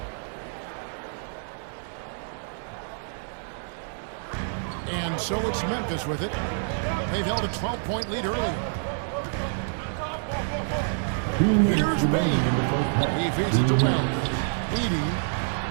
And so it's Memphis with it. They've held a 12-point lead earlier. Here's Bain. He feeds it to Wells. Edie.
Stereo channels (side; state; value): left; silent; 60 dB below the other